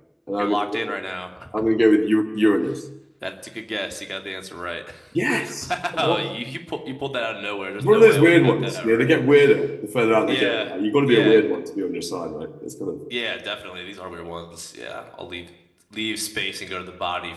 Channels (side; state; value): both; identical; correlation 1.00